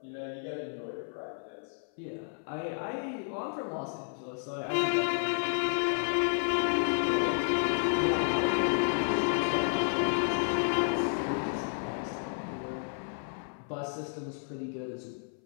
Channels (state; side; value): silent; right; 57 dB below the other